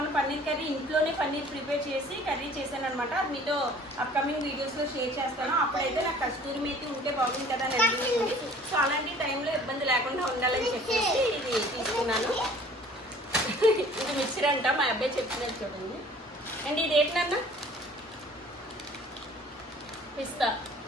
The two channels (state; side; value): normal; both; correlation 0.51